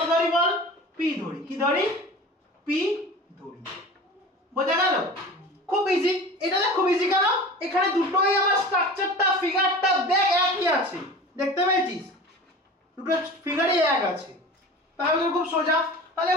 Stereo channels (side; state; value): both; normal; correlation 0.37